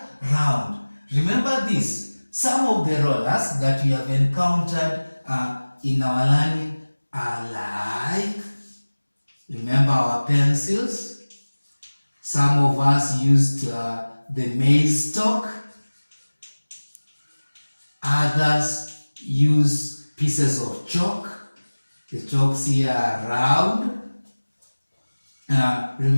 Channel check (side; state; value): both; inverted; correlation -1.00